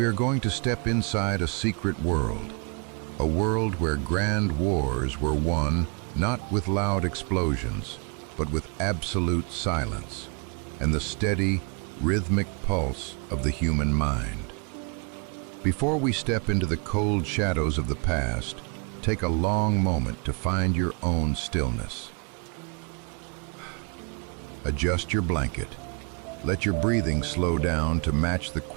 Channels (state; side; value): quieter; left; 34.9 dB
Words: are going to step inside a secret world, a world where grand wars were won not with loud explosions, but with absolute silence and the steady, rhythmic pulse of the human mind. Before we step into the cold shadows of the past, take a long moment to find your own stillness. Adjust your blanket. Let your breathing slow down to match the